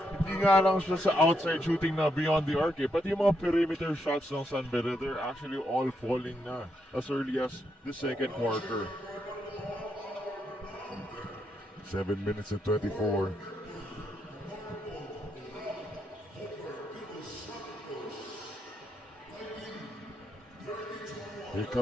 hindi nga lang siya sa outside shooting na beyond the arc, pati yung mga perimeter shots ng San Beda, they're actually all falling na as early as the second quarter. 7 minutes and 24. Here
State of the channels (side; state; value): both; normal; correlation 0.80